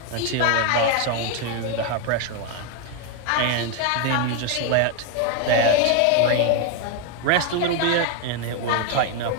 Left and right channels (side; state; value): both; different; correlation 0.01